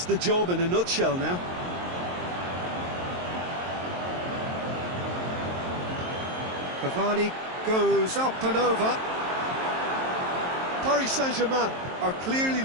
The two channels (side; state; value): left; late; 23 ms